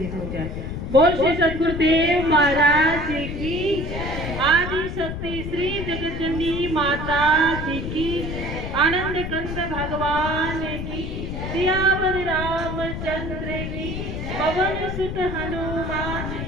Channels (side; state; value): left; noise; rumble, 5 dB below the sound